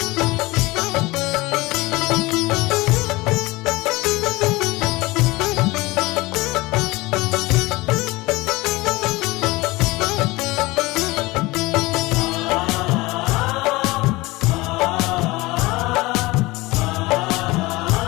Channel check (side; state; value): right; quieter; 21.5 dB